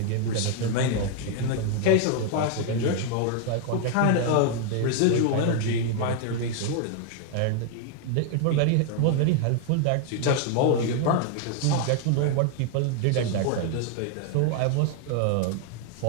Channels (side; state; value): both; different; correlation 0.00